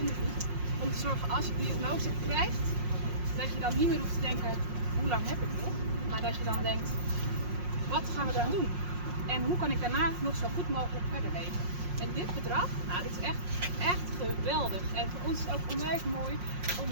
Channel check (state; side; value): late; left; 5.6 ms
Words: om te zorgen als je die diagnose krijgt, dat je dan niet meer hoeft te denken, hoe lang heb ik nog? Maar dat je dan denkt, wat gaan we dan doen? En hoe kan ik daarna nog zo goed mogelijk verder leven? En dit bedrag, nou, dit is echt geweldig. En voor ons is het ook onwijs mooi om